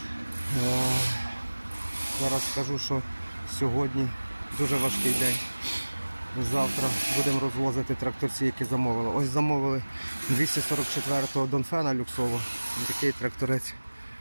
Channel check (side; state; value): both; inverted; correlation -1.00